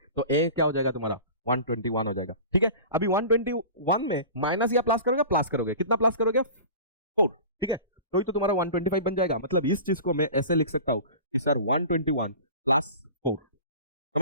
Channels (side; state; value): both; inverted; correlation -0.37